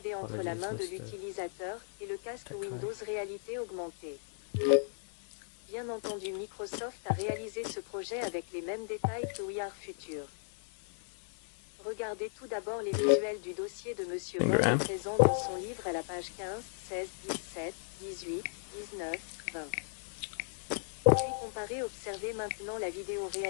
entre la main de l'utilisateur, et le casque Windows Réalité Augmentée. Bien entendu, Microsoft a réalisé ce projet avec les mêmes détails que We Are Future. Regardez tout d'abord les visuels du dossier de Monsieur Borde présent dans son livre à la page 15, 16, 17, 18, 19, 20. Puis comparez, observez maintenant la vidéo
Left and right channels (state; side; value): silent; right; digital silence